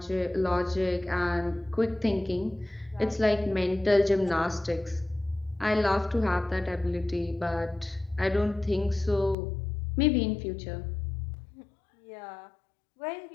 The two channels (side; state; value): right; drops out; at 9.3 s